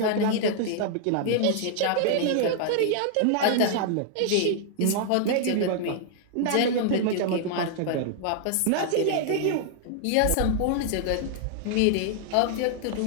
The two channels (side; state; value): both; different; correlation -0.01